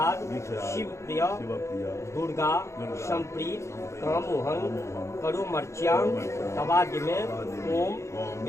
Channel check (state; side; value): late; right; 0.14 ms